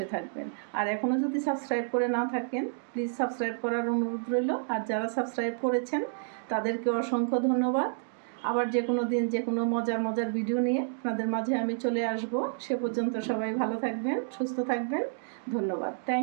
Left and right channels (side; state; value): left; silent; digital silence